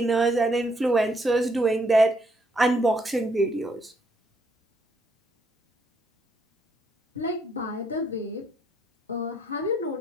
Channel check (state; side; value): normal; both; correlation 0.71